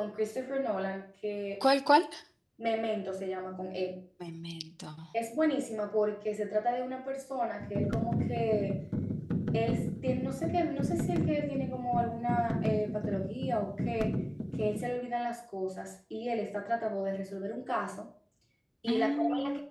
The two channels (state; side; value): identical; both; correlation 1.00